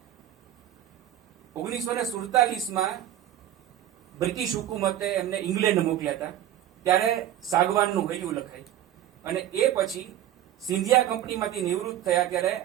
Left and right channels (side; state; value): left; quieter; 11.9 dB